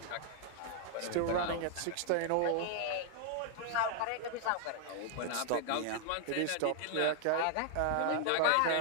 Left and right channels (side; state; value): both; different; correlation 0.00